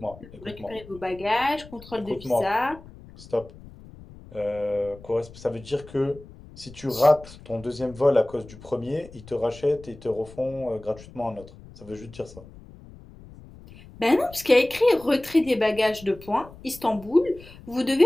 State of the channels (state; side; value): noise; left; rumble, 19 dB below the sound